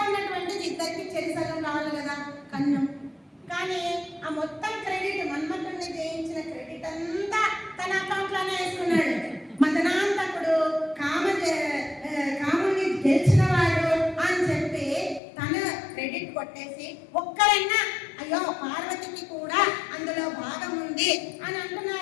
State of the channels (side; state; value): right; drops out; at 15.2 s